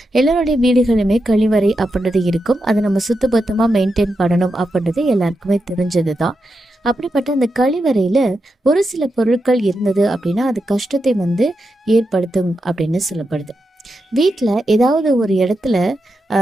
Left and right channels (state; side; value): normal; both; correlation 0.87